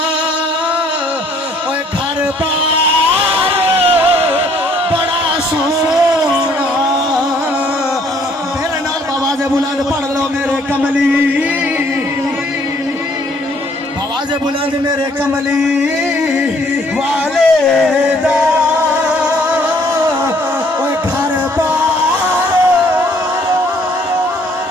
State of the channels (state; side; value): normal; both; correlation 0.63